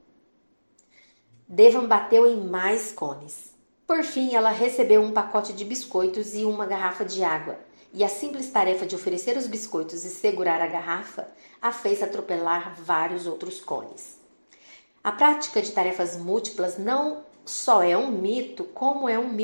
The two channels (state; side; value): inverted; both; correlation -1.00